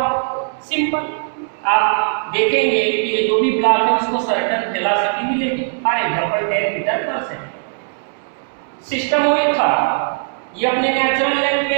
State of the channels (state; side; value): silent; left; digital silence